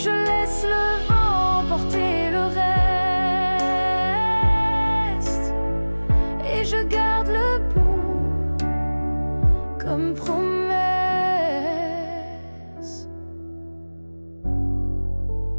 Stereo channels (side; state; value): both; inverted; correlation -1.00